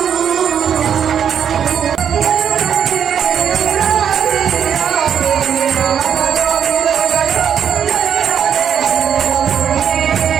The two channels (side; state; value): left; quieter; 8.3 dB